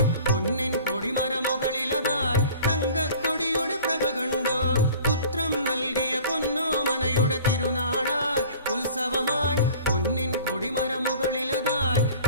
പൊന്നിൻ കൊടിമരമുകളിലതായി തങ്കക്കൊടിയുടെ പ്രഭ കണ്ടോ. പുത്രം നൽകിയ പൊന്നോമനയുടെ തിരുനാളായി ഉത്സവമായി പൊന്നിൻ കൊടിമരമുകളിലതായി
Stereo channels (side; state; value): both; inverted; correlation -0.46